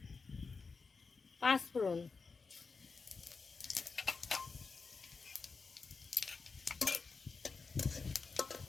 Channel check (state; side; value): quieter; right; 4.6 dB